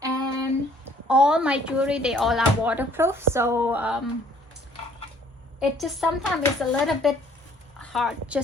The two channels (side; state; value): both; normal; correlation 0.59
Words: and all my jewelry, they all are waterproof. So it just sometimes it's a little bit hard